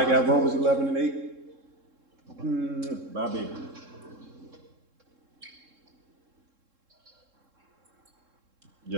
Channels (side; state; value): left; late; 3.7 ms